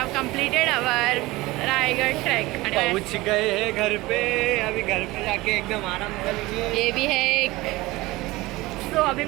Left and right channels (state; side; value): quieter; left; 20.1 dB